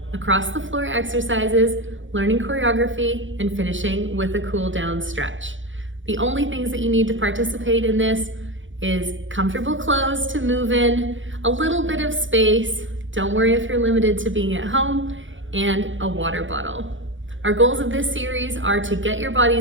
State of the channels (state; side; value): late; left; 0.56 ms